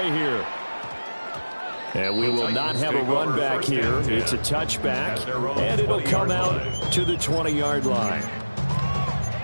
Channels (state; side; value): inverted; both; correlation -1.00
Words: here. And we will not have a run back here. It's a touchback, and it'll come out to the 20-yard line.